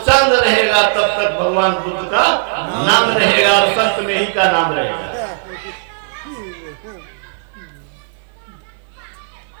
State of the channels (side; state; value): left; silent; 62 dB below the other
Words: रहेगा तब तक भगवान बुद्ध का नाम रहेगा और संत में ही का नाम रहेगा।